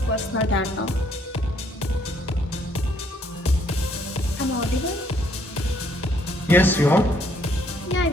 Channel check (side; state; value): both; normal; correlation 0.67